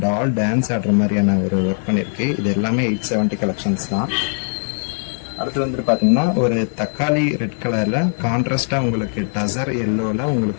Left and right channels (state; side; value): silent; right; digital silence